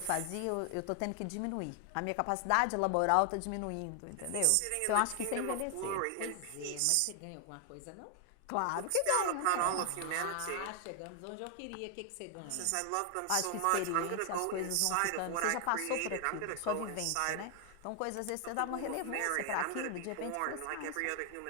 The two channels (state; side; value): different; both; correlation 0.00